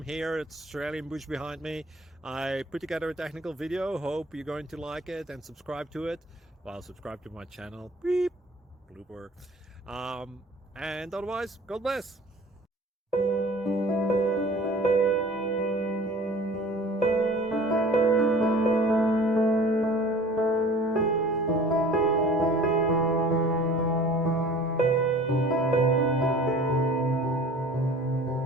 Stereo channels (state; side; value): normal; both; correlation 0.46